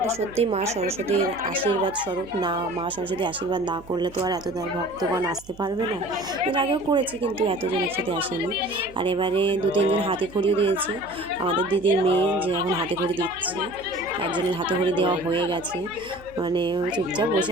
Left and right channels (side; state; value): right; noise; hum, 22 dB below the sound